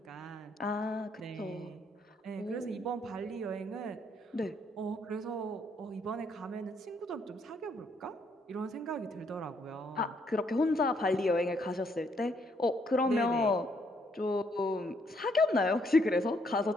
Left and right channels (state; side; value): normal; both; correlation 0.71